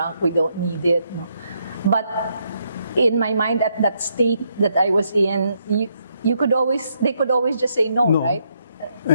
we don't need it. No. But in my mind, at that state that I was in, they could always just say no. Right?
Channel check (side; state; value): both; inverted; correlation -0.76